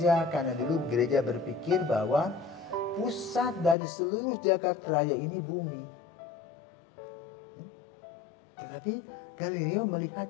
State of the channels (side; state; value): right; drops out; at 3.8 s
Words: karena dulu gereja berpikir bahwa pusat dari seluruh jagat raya ini bumi. Tetapi Galileo